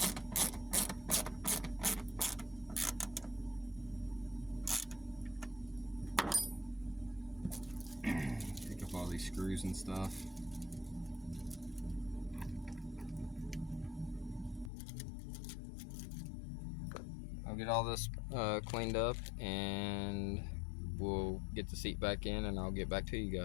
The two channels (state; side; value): drops out; right; at 14.7 s